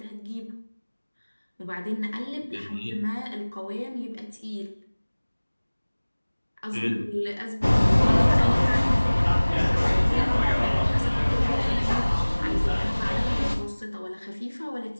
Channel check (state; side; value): inverted; both; correlation -1.00